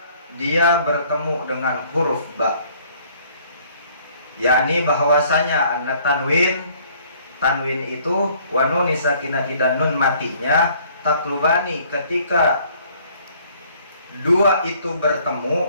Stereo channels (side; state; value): both; inverted; correlation -0.59